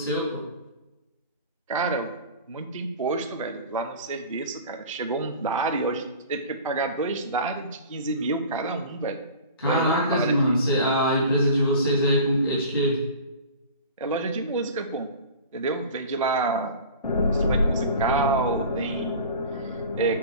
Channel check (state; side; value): inverted; both; correlation -0.39